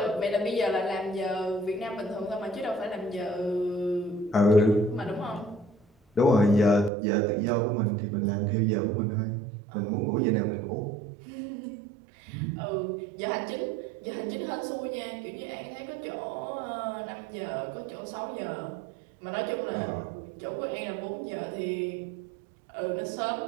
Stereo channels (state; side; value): drops out; left; at 6.9 s